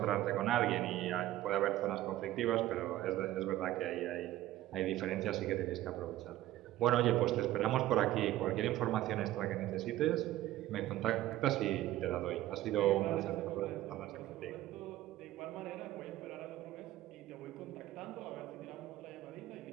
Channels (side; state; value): left; quieter; 14.8 dB